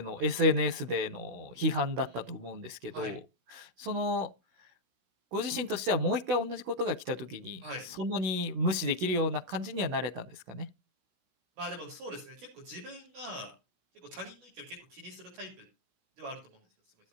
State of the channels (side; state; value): left; late; 16 ms